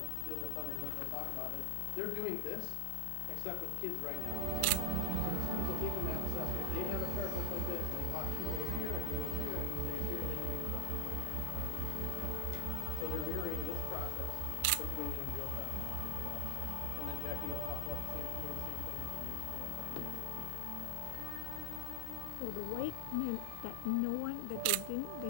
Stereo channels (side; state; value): both; different; correlation 0.00